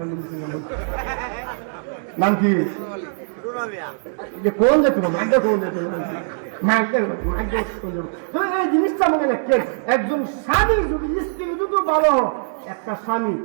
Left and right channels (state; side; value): silent; left; 65 dB below the other